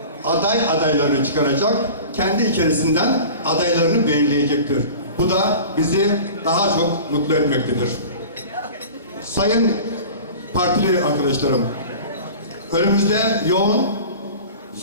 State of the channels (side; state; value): both; inverted; correlation -0.38